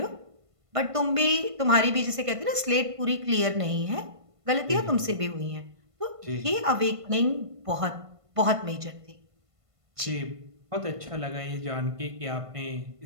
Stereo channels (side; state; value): left; late; 1.5 ms